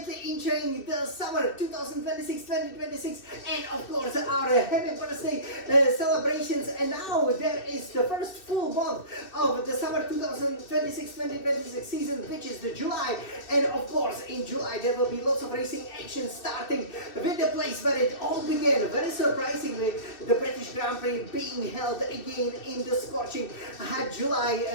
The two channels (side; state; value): right; late; 2.6 ms